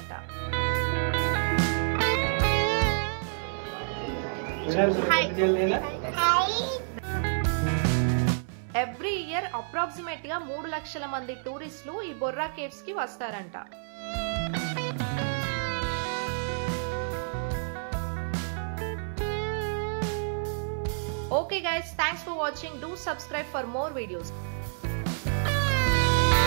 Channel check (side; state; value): left; silent; 59 dB below the other